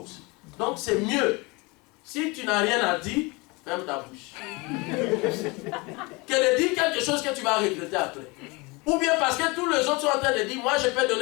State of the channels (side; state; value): right; quieter; 26.3 dB